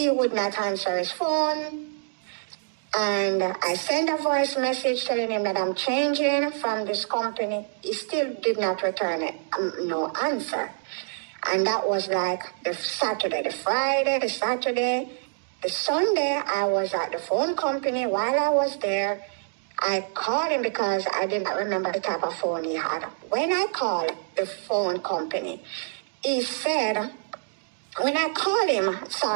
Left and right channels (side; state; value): left; silent; digital silence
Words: would not answer his phone. And I sent a voice message telling him that I'm changing from this company. He still did not return it, no answer. And that was like the Saturday, the Friday, the Saturday, the Sunday. I was at the phone company. While I was there, I called him because I did not remember the type of phone he had. When I called the phone company, he said, when I called